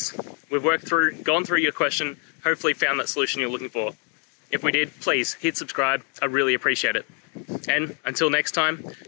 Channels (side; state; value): right; quieter; 38.4 dB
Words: We've gone through your question, hopefully found that solution you're looking for. If we did, please hit subscribe. I really appreciate it. And until next time,